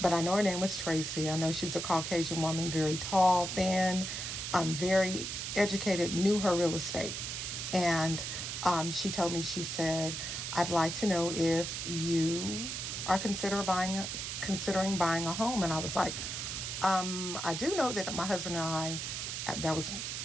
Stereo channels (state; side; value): noise; right; hiss, 4 dB below the sound